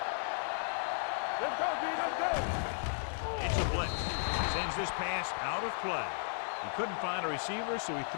Go. It's a blitz. Sends this pass out of play. He couldn't find a receiver, so he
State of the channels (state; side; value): silent; right; digital silence